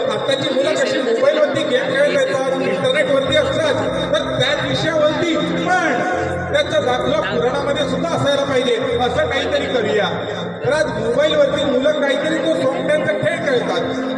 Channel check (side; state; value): both; identical; correlation 1.00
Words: आताची मुलं कशी मोबाईलवरती गेम खेळत येतात, इंटरनेटवरती असतात, तर त्याच विषयावरती पण त्याचा दाखला पुराणामध्ये सुद्धा असायला पाहिजे. असं काहीतरी करूया. तर आज मोबाईलवरती मुलं काहीतरी तो सोंगट्यांचा खेळ